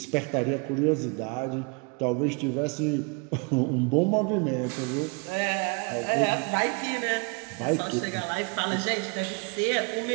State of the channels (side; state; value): left; quieter; 32.6 dB